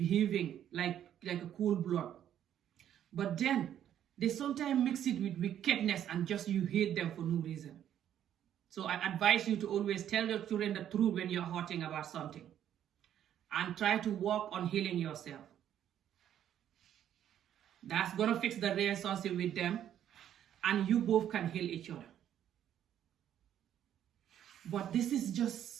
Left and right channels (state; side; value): quieter; left; 10.5 dB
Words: like a cool blood. But then they sometimes mix it with wickedness and just you hate them for no reason. So I advise you to always tell your children the truth when you're hurting about something, and try to work on healing yourself. That's gonna fix the relationship with them, and you both can heal each other. But this is